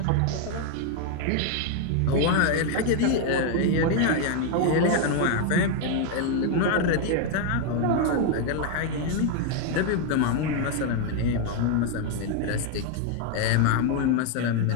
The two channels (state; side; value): different; both; correlation 0.01